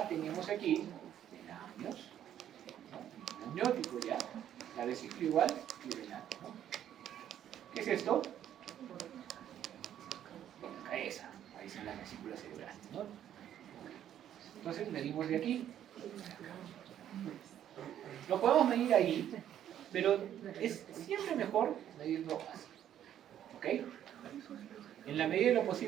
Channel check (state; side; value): quieter; left; 10.7 dB